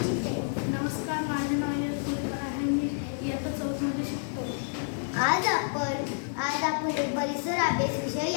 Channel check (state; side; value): silent; right; 58 dB below the other